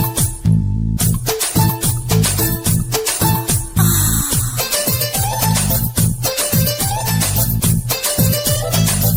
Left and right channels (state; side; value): identical; both; correlation 1.00